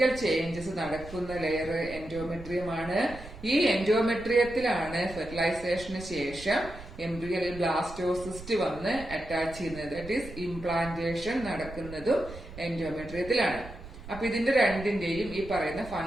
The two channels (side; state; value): right; noise; rumble, 14 dB below the sound